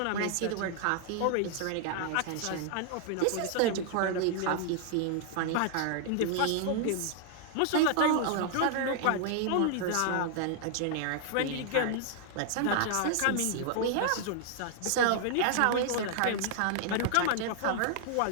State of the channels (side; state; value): both; different; correlation 0.00